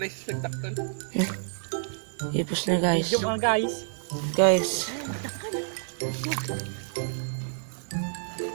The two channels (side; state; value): left; silent; digital silence